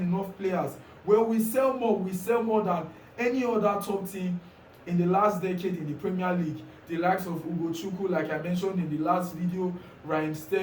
players? Well, we sell more than any other top team in the last decade in the Premier League. The likes of Ugochukwu, like I mentioned in the last video, Raheem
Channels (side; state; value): both; identical; correlation 1.00